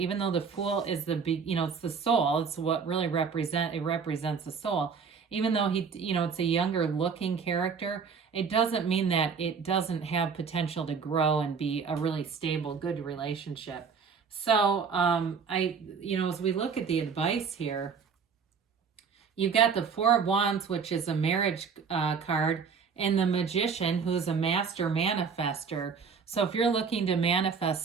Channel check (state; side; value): quieter; left; 5.9 dB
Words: though the Fool is it's the soul. It's what really represents the soul. Even though it's a younger looking character, it doesn't mean that it doesn't have potential to grow and be a really stable, good relationship. So, as we look at the advice here, you've got the 4 of Wands, which is a marriage card, and the Magician, who's a master manifester. So if you're looking to manifest